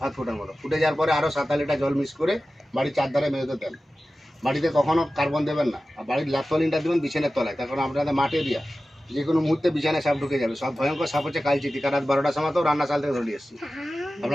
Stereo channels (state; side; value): normal; both; correlation 0.95